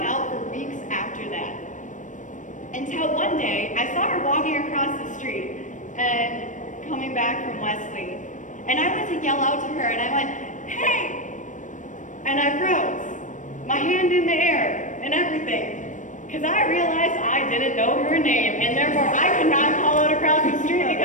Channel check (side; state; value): right; late; 0.37 ms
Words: out for weeks after that. Until one day, I saw her walking across the street and coming back from Wesley. And I went to yell out to her, and I went, hey! And I froze, my hand in the air and everything. Because I realized I didn't know her name, and therefore I could not call out across the street,